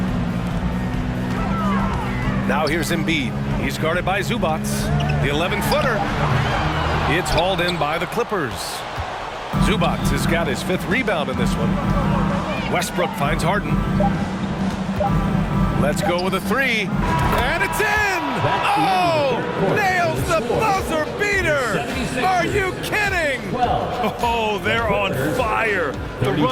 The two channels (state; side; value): identical; both; correlation 1.00